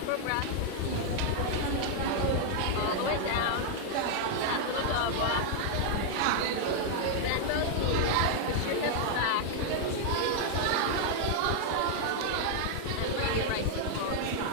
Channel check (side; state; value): both; different; correlation 0.00